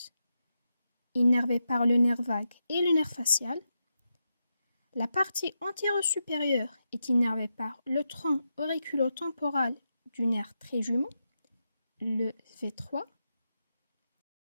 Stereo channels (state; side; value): inverted; both; correlation -0.87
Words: innervé par le nerf vague et le nerf facial. La partie antéro-supérieure est innervée par le tronc auriculo-temporal du nerf trijumeau, le V3.